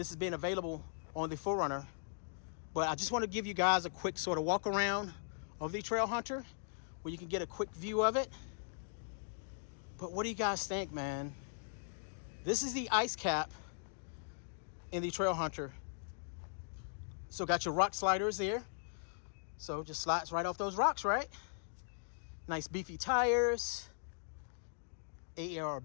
has been available on the 4Runner. But I just want to give you guys a quick sort of walk around of the Trailhunter where you can get a quick view of it. But what do you guys think, man? This is the ice cap in the Trailhunter. So got your rock sliders there. So just slides right off those rocks, right? Nice beefy tires.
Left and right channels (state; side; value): silent; right; digital silence